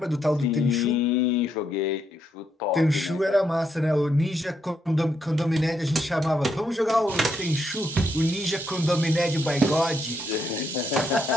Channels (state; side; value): normal; both; correlation 0.77